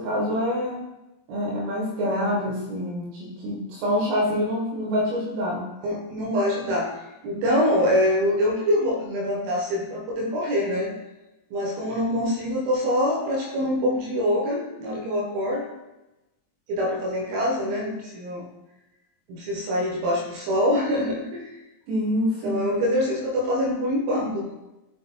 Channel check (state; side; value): late; left; 23 ms